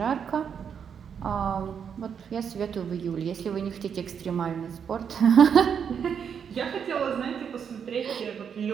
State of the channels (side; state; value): left; quieter; 7.4 dB